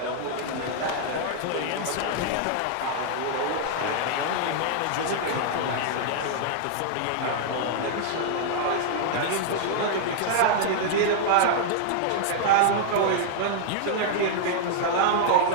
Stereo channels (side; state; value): both; different; correlation -0.01